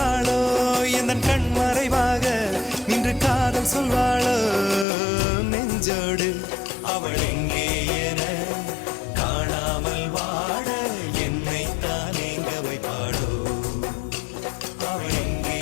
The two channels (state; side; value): drops out; right; at 4.9 s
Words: எந்தன் கண் மறைவாக. இன்று காதல் சொல்வாளோ நெஞ்சோடு. அவள் எங்கே என காணாமல் வாட என்னை தான் எங்க வைப்பாளோ. அவள் எங்கே